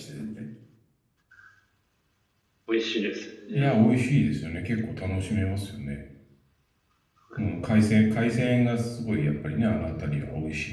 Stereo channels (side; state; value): both; identical; correlation 1.00